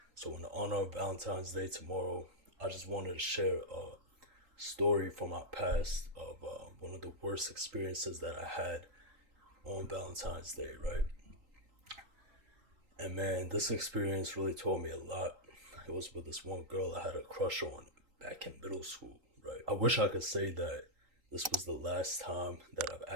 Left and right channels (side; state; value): left; late; 3.9 ms